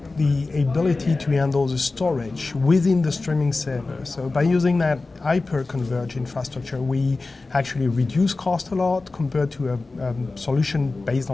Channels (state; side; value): quieter; right; 3.5 dB